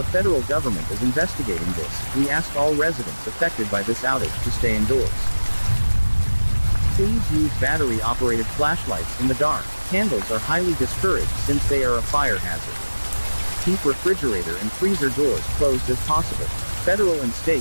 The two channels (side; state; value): both; inverted; correlation -1.00